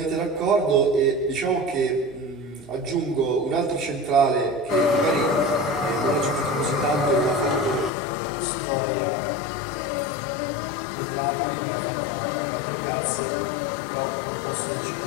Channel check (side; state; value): right; drops out; at 7.9 s